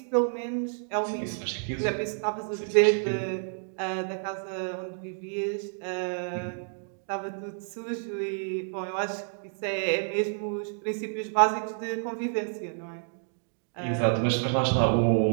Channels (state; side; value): silent; left; 58 dB below the other